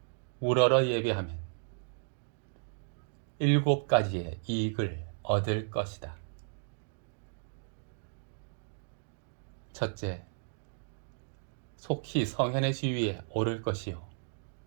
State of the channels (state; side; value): silent; left; digital silence